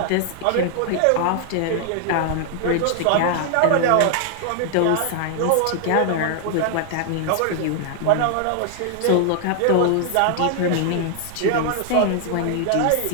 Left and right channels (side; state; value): both; different; correlation 0.00